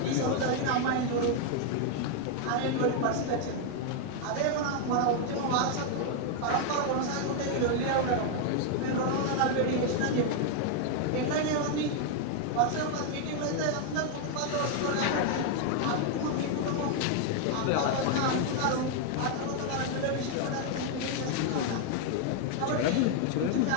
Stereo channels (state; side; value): different; both; correlation 0.00